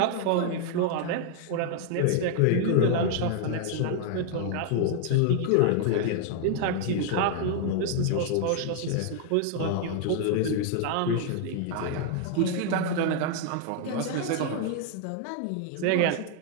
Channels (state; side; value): different; both; correlation 0.00